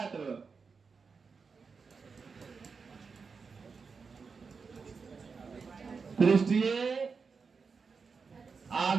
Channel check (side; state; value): left; quieter; 5.1 dB